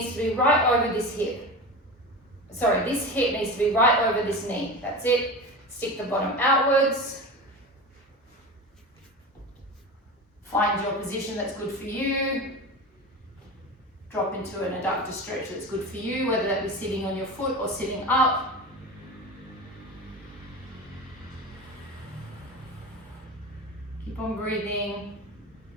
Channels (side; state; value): both; normal; correlation 0.28